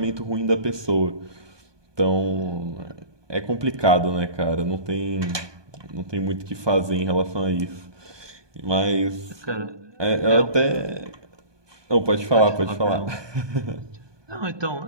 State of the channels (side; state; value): left; late; 1.2 ms